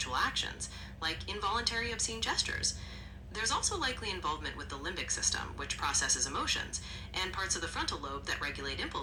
actions, like involuntary obscene gestures. There's also likely involvement with the limbic system, which processes emotions, and parts of the frontal lobe that regulate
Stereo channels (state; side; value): identical; both; correlation 1.00